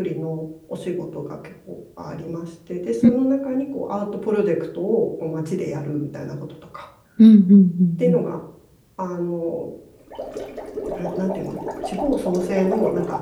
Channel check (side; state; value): both; identical; correlation 1.00